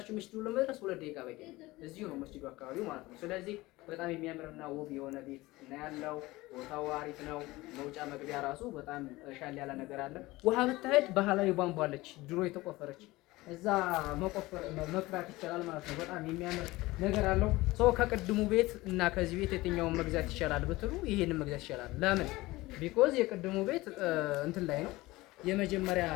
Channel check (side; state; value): right; quieter; 19.8 dB